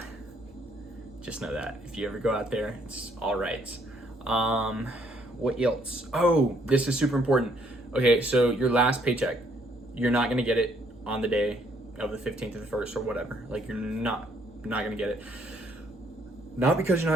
just know that if you ever go out there, it's all right. What else? Oh, this is super important. Okay, so your last paycheck, you're not gonna get it on the day of the 15th or the 1st or whatever. Like, you're not gonna get it. Not because you're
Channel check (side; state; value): both; normal; correlation 0.68